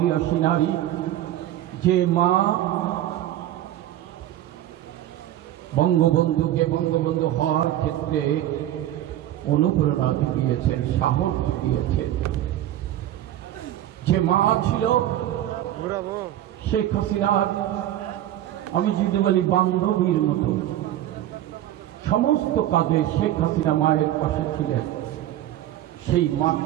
নারী, যে মা বঙ্গবন্ধুকে বঙ্গবন্ধু হওয়ার ক্ষেত্রে অনুপ্রেরণা দিয়েছেন, সাহস দিয়েছেন, যে মা ছিল শেখ হাসিনার, আমি যদি বলি বান্ধবীর মতো, সমস্ত কাজে শেখ হাসিনা মায়ের পাশে ছিলেন, সেই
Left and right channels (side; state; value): left; quieter; 12.9 dB